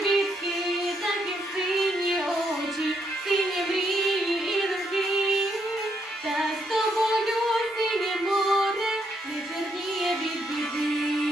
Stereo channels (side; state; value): both; normal; correlation 0.76